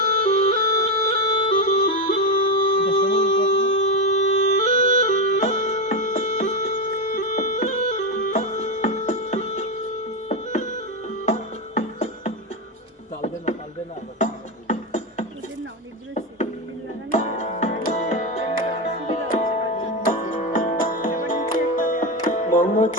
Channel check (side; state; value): both; normal; correlation 0.12